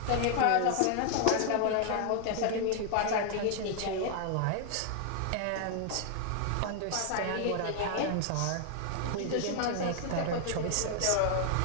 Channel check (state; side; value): different; both; correlation 0.00